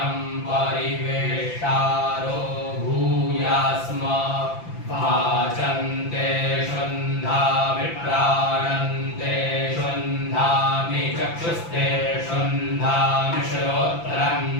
शुन्धामि प्राणन्ते शुन्धामि चक्षुस्ते शुन्धामि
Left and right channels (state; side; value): late; right; 5.9 ms